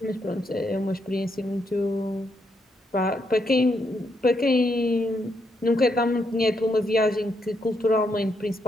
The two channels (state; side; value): normal; both; correlation 0.78